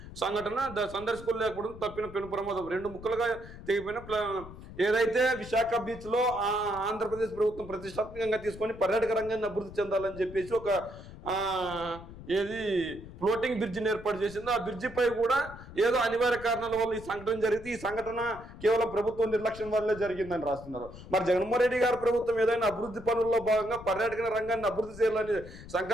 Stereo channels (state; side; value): noise; left; rumble, 15 dB below the sound